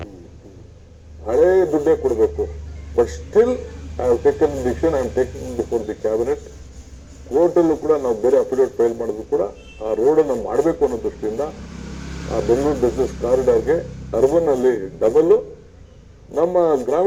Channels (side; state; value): both; identical; correlation 1.00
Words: ಹಳೇ ದುಡ್ಡೇ ಕೊಡಬೇಕು. But still I have taken decision, I am taking before the cabinet. ಕೋರ್ಟಲ್ಲೂ ಕೂಡ ನಾವು ಬೇರೆ ಅಫಿಡೇವಿಟ್ ಫೈಲ್ ಮಾಡಿದ್ರು ಕೂಡ ಆ ರೋಡನ್ನು ಮಾಡಬೇಕು ಅನ್ನೋ ದೃಷ್ಟಿಯಿಂದ ಆ ಬೆಂಗಳೂರು ಬಿಸ್ನೆಸ್ ಕಾರಿಡಾರ್ಗೆ ಅರ್ಬನ್ ಅಲ್ಲಿ ಡಬಲ್, ನಮ್ಮ